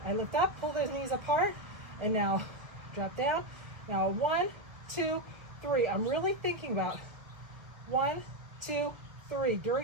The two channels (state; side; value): late; left; 1.6 ms